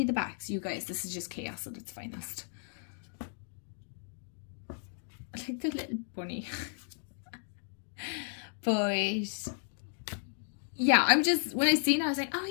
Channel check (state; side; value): silent; right; digital silence